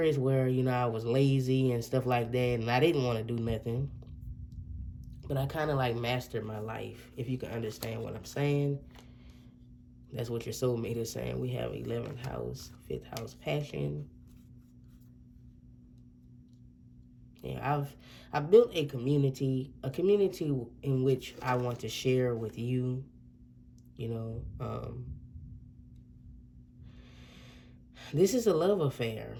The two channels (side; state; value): both; identical; correlation 1.00